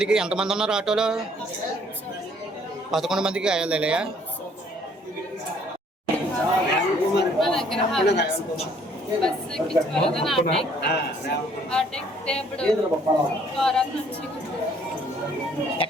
ఎంతమంది ఉన్నారు ఆటోలో? 11 మందికి గాయాలయ్యా?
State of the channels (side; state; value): both; normal; correlation 0.62